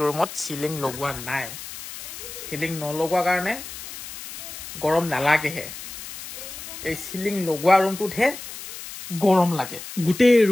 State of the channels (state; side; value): noise; left; hiss, 12 dB below the sound